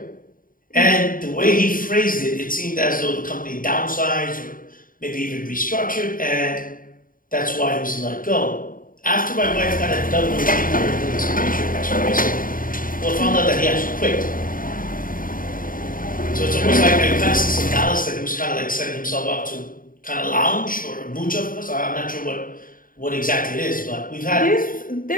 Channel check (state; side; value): late; right; 0.40 ms